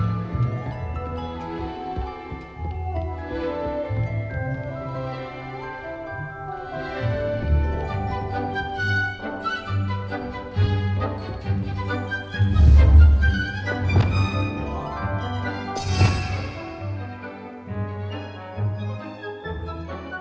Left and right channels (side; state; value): both; identical; correlation 1.00